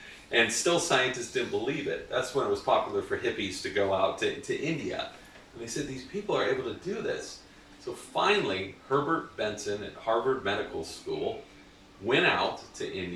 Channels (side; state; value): both; identical; correlation 1.00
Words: And still scientists didn't believe it. That's when it was popular for hippies to go out to India. And they said, these people are able to do this. So finally, Herbert Benson at Harvard Medical School went out to